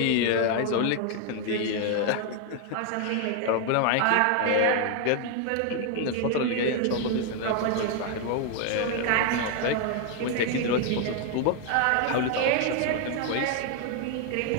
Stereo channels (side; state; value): both; different; correlation 0.01